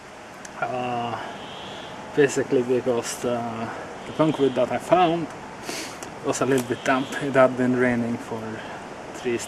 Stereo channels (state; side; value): identical; both; correlation 1.00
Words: Basically because the punk wood that I found was a little bit damp. It had been raining for 3